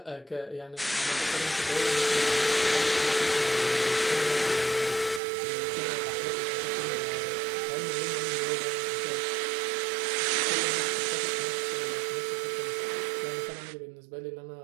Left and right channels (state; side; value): drops out; left; at 5.2 s